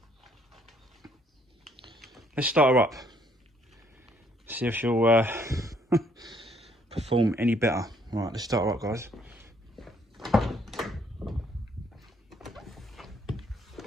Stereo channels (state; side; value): normal; both; correlation 0.66